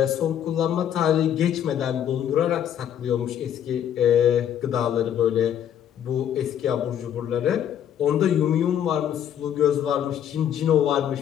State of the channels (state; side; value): quieter; right; 9.8 dB